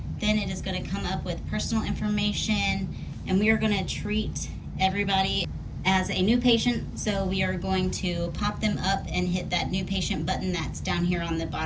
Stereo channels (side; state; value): both; identical; correlation 1.00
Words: Then it is gonna come up with personal information, and we are gonna treat everybody as a new patient. So we are going to pop them up and hit that new patient button that's down here on the